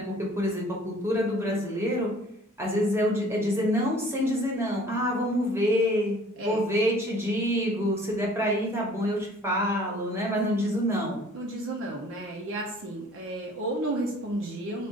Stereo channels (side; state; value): both; normal; correlation 0.52